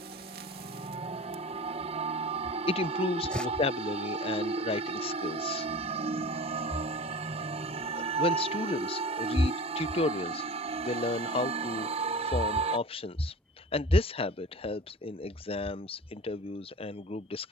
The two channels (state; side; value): normal; both; correlation 0.36